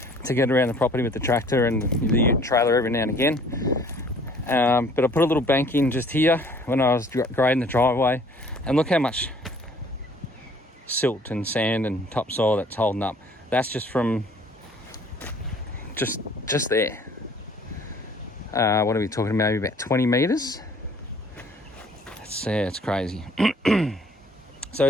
to get around the property with the tractor and the trailer every now and again. But I put a little bank in just here when I was grading the driveway, and look how much silt and sand and topsoil that's holding up. That's just from just there. What are we talking about? Maybe about 20 meters. It's crazy. So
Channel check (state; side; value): normal; both; correlation 0.55